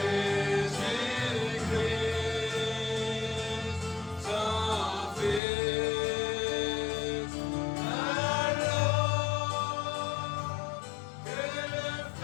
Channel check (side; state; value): right; drops out; at 5.4 s